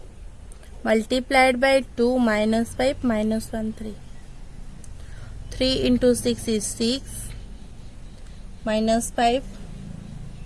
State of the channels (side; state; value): both; identical; correlation 1.00